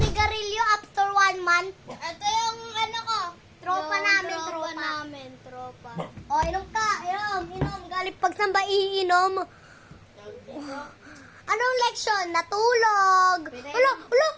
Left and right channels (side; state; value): both; identical; correlation 1.00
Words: after 1 month. Ito yung ano ko. Tropa namin, tropa. namin, tropa. O, inom ka. Inom. Galing pagsamba, iinom. Anong leksyon? Natulog. Wala.